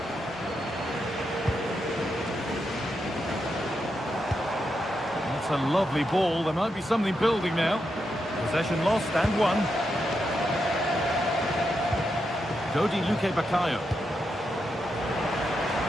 That's a lovely ball. There might be something building now. Possession lost and won. Dodi Luque Baccaio.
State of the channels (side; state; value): both; normal; correlation 0.84